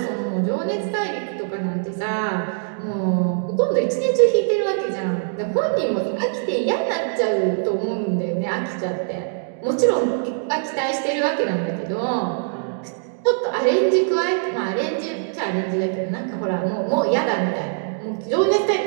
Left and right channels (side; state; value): left; silent; digital silence